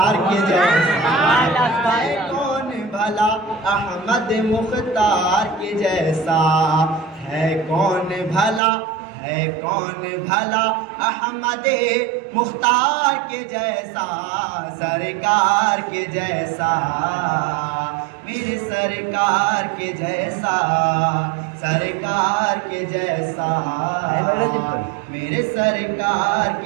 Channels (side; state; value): left; drops out; at 8.6 s